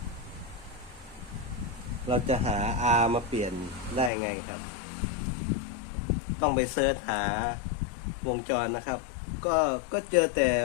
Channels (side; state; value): right; drops out; at 4.1 s